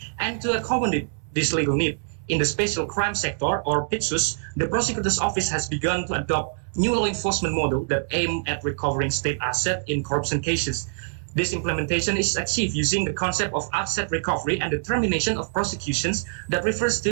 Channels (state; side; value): silent; left; 62 dB below the other